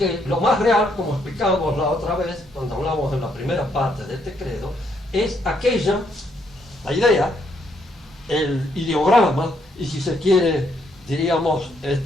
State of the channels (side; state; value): both; normal; correlation 0.73